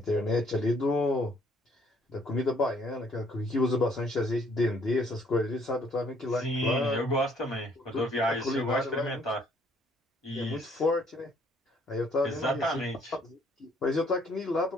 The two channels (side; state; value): both; normal; correlation 0.64